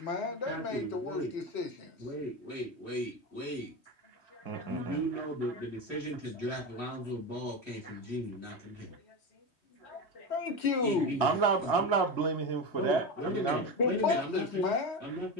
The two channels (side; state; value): right; late; 3.2 ms